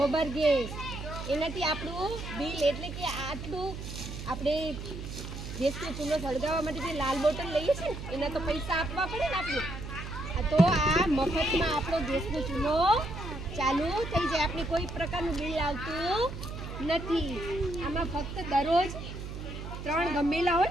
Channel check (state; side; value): noise; right; hum, 8 dB below the sound